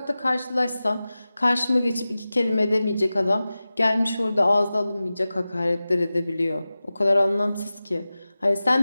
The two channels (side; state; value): both; inverted; correlation -0.96